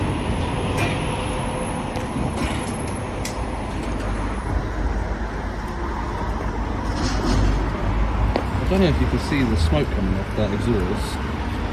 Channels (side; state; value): both; identical; correlation 1.00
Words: I don't know if you can see the smoke coming off that exhaust,